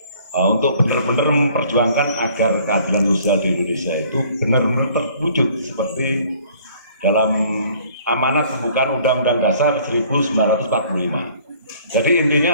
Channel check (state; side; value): inverted; both; correlation -0.56